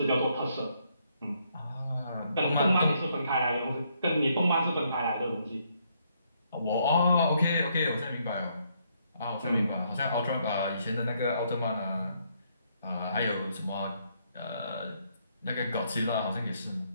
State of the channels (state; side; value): inverted; both; correlation -0.72